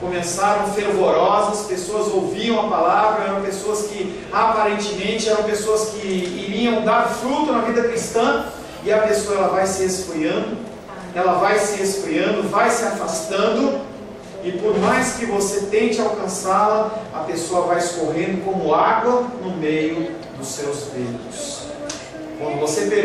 fervorosas, pessoas ouviam a palavra, eram pessoas que aparentemente eram pessoas que iriam dar fruto na vida cristã, e a pessoa ela vai se esfriando, vai se afastando, e por mais que você tente alcançá-la, a pessoa vai escorrendo como água no meio dos seus dedos. Quando você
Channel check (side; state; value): both; identical; correlation 1.00